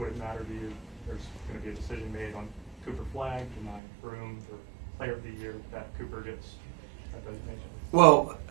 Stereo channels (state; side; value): drops out; left; at 3.8 s